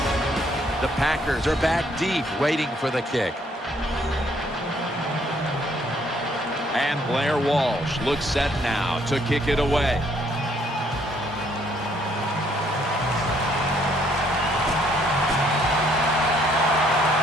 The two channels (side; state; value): both; normal; correlation 0.67